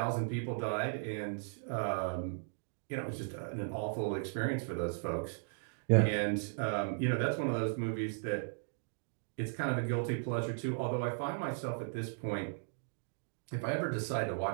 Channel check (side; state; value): left; silent; digital silence